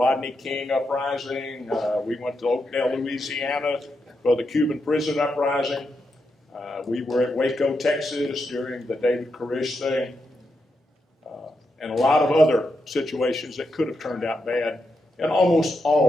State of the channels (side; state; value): both; normal; correlation 0.84